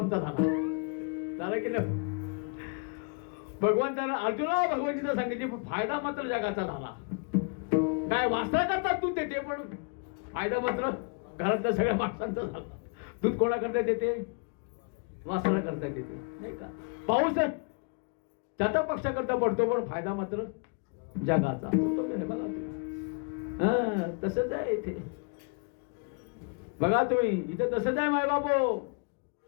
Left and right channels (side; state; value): right; quieter; 36.6 dB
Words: झाला की नाही? भगवंतानं अर्जुनाला भगवद्गीता सांगितली, पण फायदा मात्र जगाचा झाला. काय वासना करतात दूध देते, पण फायदा मात्र घरातल्या सगळ्या माणसांचा झाला. दूध कोणा करता देते? वासना करता देते नाही का? पाऊस जाता पक्षा करता पडतो, पण फायदा मात्र जगाचा. बघा तसंच आहे इथे. बघा तुम्ही इथे तसंच आहे. माय बापो